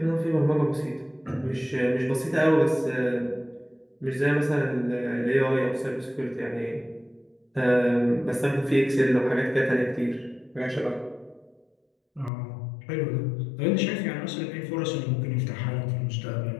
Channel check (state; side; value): drops out; right; at 12.3 s